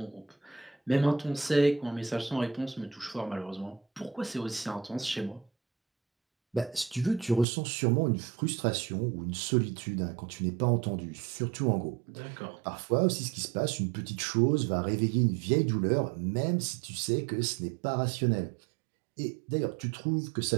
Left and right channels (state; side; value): drops out; left; at 7.5 s